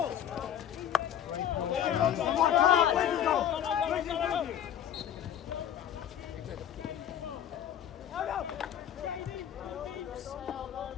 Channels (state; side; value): quieter; right; 9.9 dB